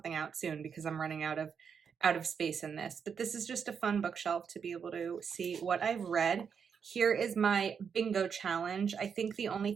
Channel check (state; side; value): quieter; left; 6.7 dB